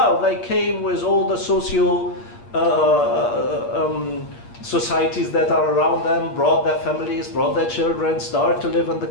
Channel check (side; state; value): right; late; 8.5 ms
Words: they came with all the socio societies that are around them, brought their families, brought their children, started to live in the